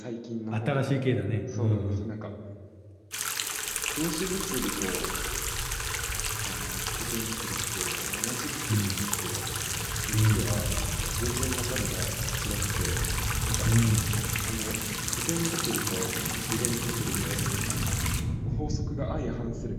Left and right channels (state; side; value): identical; both; correlation 1.00